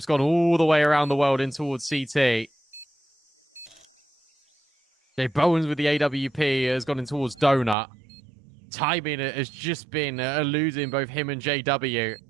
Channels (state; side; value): drops out; left; at 7.8 s